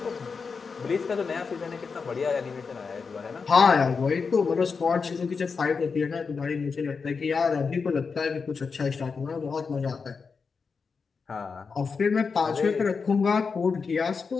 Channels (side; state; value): right; quieter; 5.2 dB